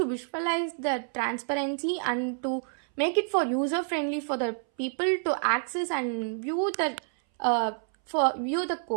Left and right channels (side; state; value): left; silent; 59 dB below the other